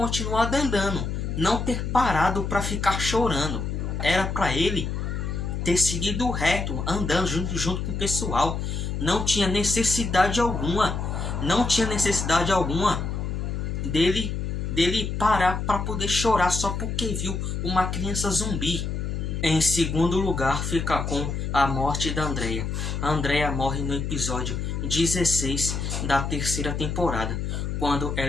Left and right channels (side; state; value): left; noise; hum, 3 dB below the sound